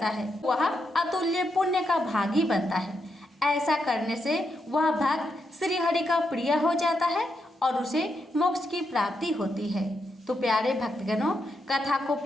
है, वह अतुल्य पुण्य का भागी बनता है। ऐसा करने से वह भक्त श्री हरि का प्रिय हो जाता है और उसे मोक्ष की प्राप्ति होती है। तो प्यारे भक्तगणों, कथा को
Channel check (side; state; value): both; normal; correlation 0.82